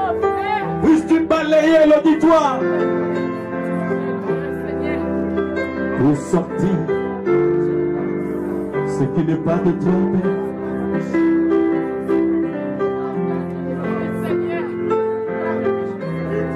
puisses-tu balayer l'auditoire pour sortir ce qui n'est pas de toi, Père.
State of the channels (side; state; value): both; identical; correlation 1.00